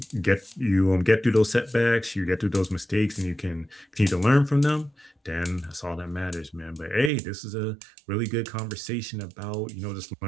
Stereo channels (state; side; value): drops out; left; at 7.1 s